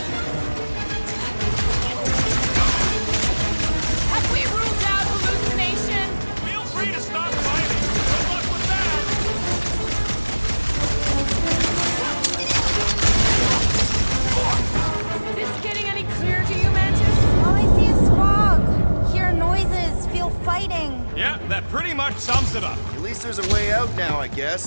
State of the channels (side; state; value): both; inverted; correlation -1.00